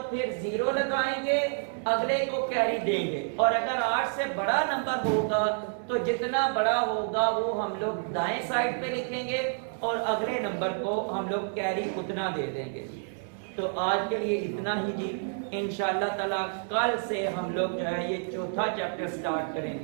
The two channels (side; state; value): left; silent; 59 dB below the other